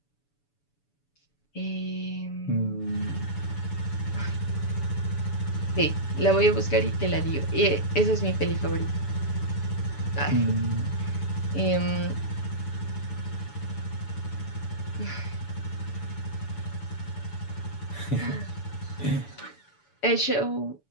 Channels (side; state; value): right; late; 7.0 ms